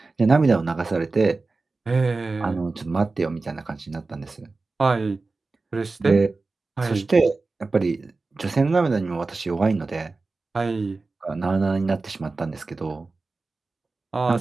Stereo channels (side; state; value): left; quieter; 3.7 dB